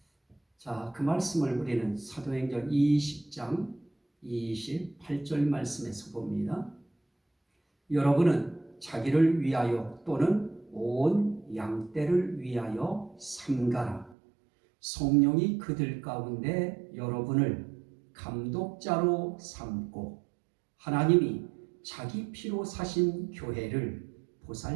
자, 그 말씀을 우리는 사도행전 20장 28절 말씀에서 봅니다. 여러분은 자기를 위하여 또는 온 양떼를 위하여 삼가라. 성령이 그들 가운데 여러분을 감독자로 삼고 하나님이 자기 피로 사신 교회를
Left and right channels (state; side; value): drops out; left; at 14.2 s